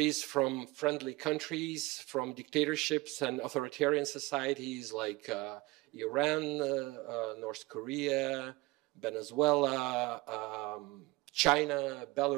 from friendly countries, from dictatorships and authoritarian societies like Iran, North Korea, Venezuela, China,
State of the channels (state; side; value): quieter; left; 21.8 dB